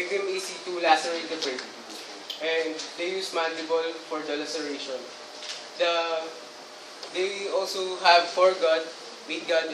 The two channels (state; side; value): identical; both; correlation 1.00